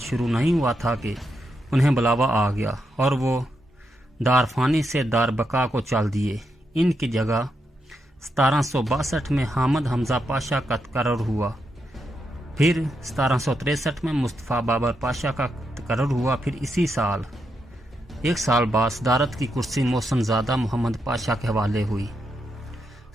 نہیں ہوا تھا کہ انہیں بلاوا آ گیا اور وہ دار فانی سے دار بقا کو چال دیے۔ ان کی جگہ 1762 میں حامد حمزہ پاشا کا تقرر ہوا، پھر 1763 میں مصطفیٰ بابر پاشا کا تقرر ہوا، پھر اسی سال ایک سال بعد صدارت کی کرسی محسن زادہ محمد پاشا کے حوالے ہوئی۔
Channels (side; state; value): both; normal; correlation 0.83